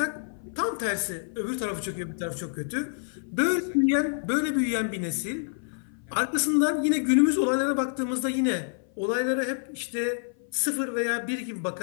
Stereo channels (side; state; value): right; silent; 57 dB below the other